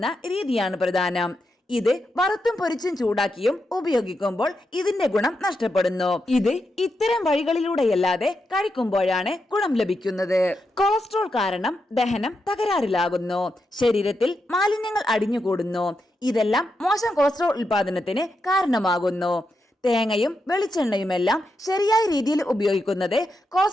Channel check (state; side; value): normal; both; correlation 0.85